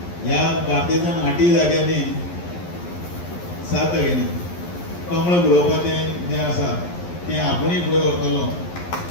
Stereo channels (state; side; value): late; right; 11 ms